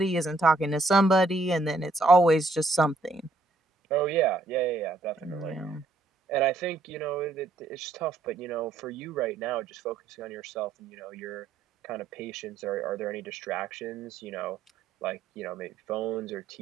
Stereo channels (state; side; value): quieter; left; 3.3 dB